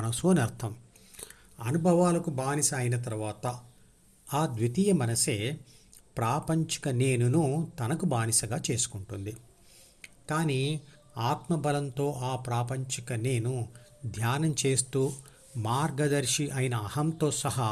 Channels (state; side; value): identical; both; correlation 1.00